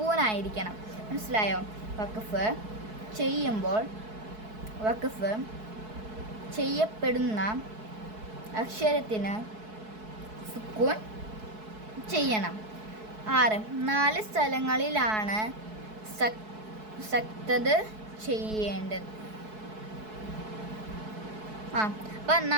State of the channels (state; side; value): late; left; 4.7 ms